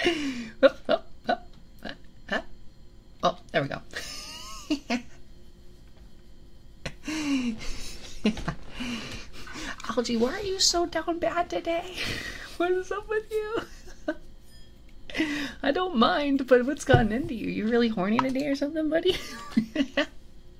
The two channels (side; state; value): both; identical; correlation 1.00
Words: Oh, there we go. Algie, why are you so down bad today? What is up with you? I don't mind, but what's gotten into you? You really horny today or something, buddy?